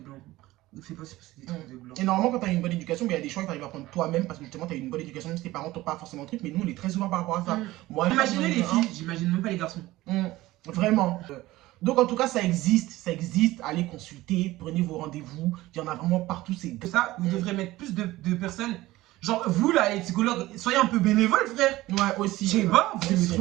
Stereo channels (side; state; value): left; quieter; 17.6 dB